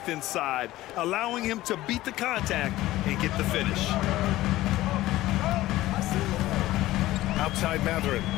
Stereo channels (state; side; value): quieter; right; 16.3 dB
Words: inside, allowing him to beat the contact and get the finish. Outside Matherin.